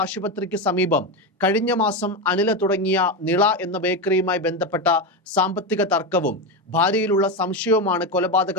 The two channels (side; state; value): both; normal; correlation 0.14